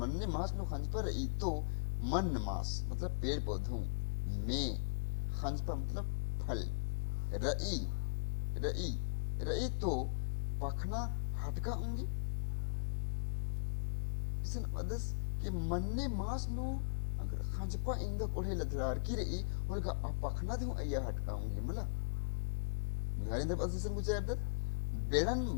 मास नु खंजपर ई तो मन मास मतलब पेड़ पौधों में खंजपर मतलब फल रई रई रई तो पखना हटका होंगे इसन अदस कि मन्ने मास नु अगर खंजपा इंगा कोढ़े लदरार की रई उनका पखना दे अया हटका होंगे मला मिलारी दे पसिसन कुछ अदत बेड़न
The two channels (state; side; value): silent; right; 52 dB below the other